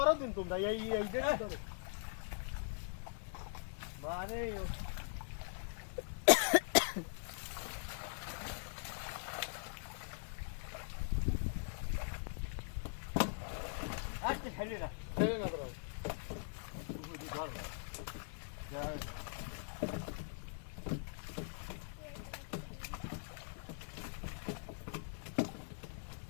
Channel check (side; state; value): right; silent; digital silence